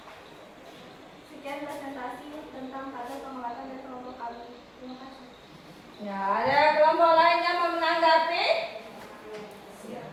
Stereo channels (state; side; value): identical; both; correlation 1.00